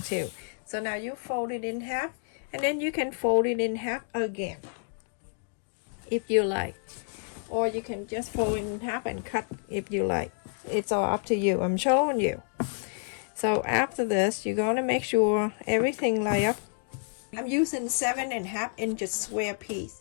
too. So now you fold it in half, and then you can fold it in half again if you like, or you can just fold it in half and cut if you like. It's all up to you. I'm showing you. So after this, you're going to make sure everything line up. I'm using 7.5 inches square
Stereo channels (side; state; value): right; silent; digital silence